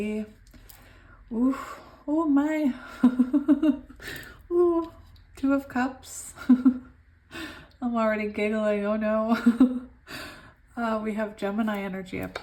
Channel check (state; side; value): identical; both; correlation 1.00